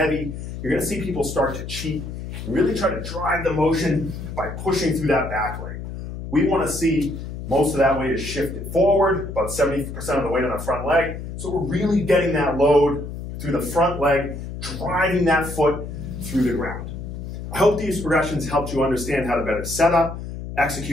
you're going to see people start to cheat and really try to drive the motion by pushing through that back leg. We want to see most of that weight is shifted forward, about 70% of the weight on the front leg. So we're really getting that load through the front leg, driving that foot through the ground. I hope these progressions helped you understand how to better set up,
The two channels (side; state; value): left; noise; hum, 8 dB below the sound